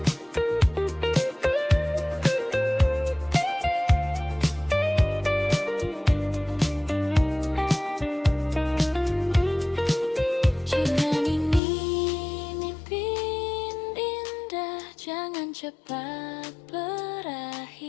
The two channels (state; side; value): drops out; right; at 11.6 s